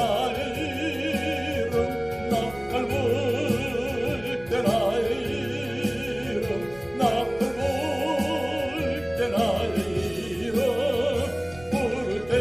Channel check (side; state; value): right; noise; rumble, 21 dB below the sound